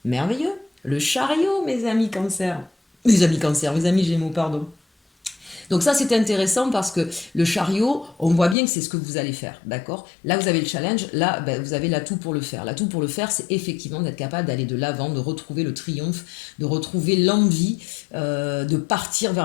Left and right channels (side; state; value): right; drops out; at 8.6 s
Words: merveilleux, le chariot mes amis cancer. Mes amis cancer, mes amis gémeaux, pardon. Donc ça, c'est intéressant parce que le chariot, on voit bien que c'est ce que vous allez faire, d'accord? Là, vous avez le challenge, là, ben, vous avez l'atout pour le faire. L'atout pour le faire, c'est effectivement d'être capable d'aller de l'avant, de retrouver le triomphe, de retrouver l'envie, de partir